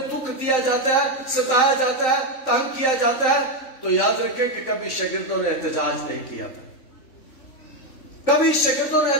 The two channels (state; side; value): late; right; 3.9 ms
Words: دکھ دیا جاتا ہے، ستایا جاتا ہے، تنگ کیا جاتا ہے، تو یاد رکھیں کہ کبھی شاگردوں نے احتجاج نہیں کیا تھا، کبھی شاگردوں نے